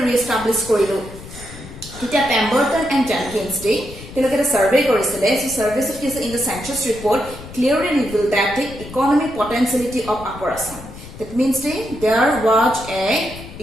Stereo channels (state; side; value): noise; left; rumble, 15 dB below the sound